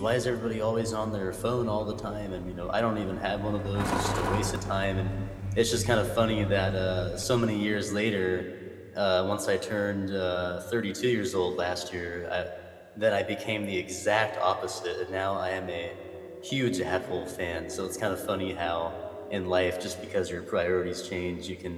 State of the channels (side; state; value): both; identical; correlation 1.00